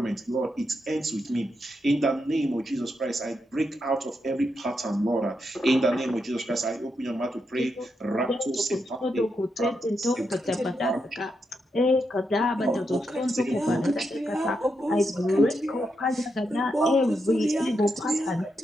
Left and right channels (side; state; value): both; normal; correlation 0.83